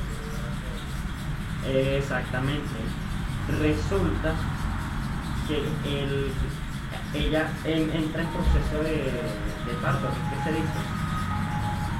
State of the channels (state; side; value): identical; both; correlation 1.00